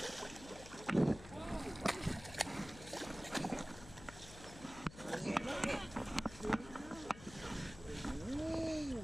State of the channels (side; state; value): left; noise; hum, 15 dB below the sound